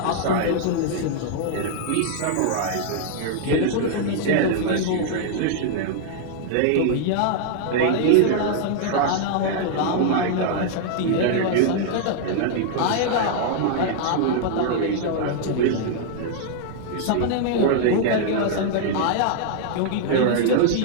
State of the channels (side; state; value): both; different; correlation -0.01